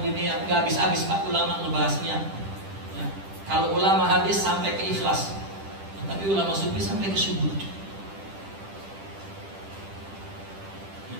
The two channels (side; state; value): left; late; 10 ms